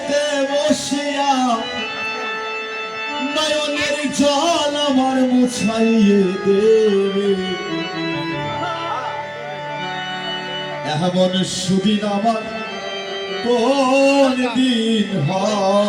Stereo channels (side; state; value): both; identical; correlation 1.00